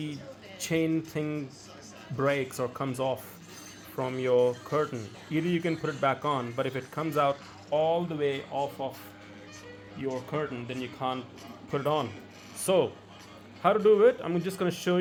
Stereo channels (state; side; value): identical; both; correlation 1.00